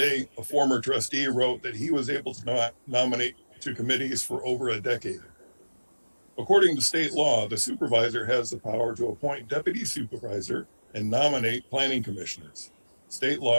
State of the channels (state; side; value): inverted; both; correlation -1.00